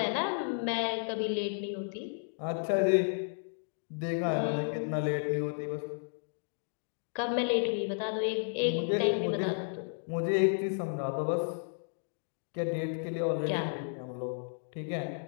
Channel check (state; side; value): silent; right; digital silence